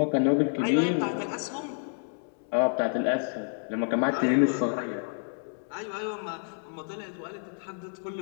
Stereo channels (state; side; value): silent; right; 59 dB below the other